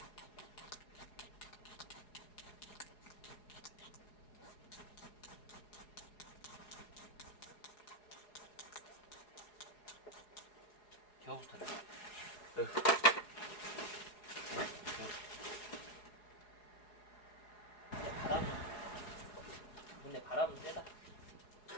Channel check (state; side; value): late; right; 4.8 ms